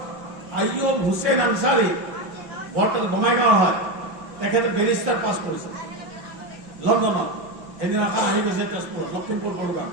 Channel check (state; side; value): late; left; 5.6 ms